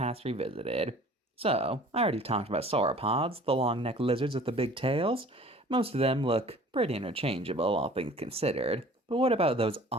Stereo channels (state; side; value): normal; both; correlation 0.48